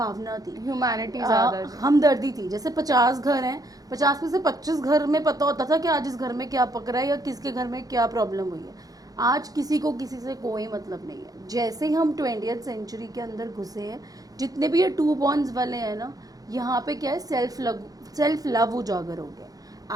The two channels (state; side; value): late; left; 0.18 ms